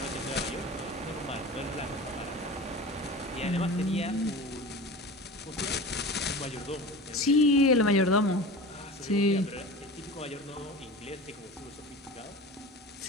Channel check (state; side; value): normal; both; correlation 0.34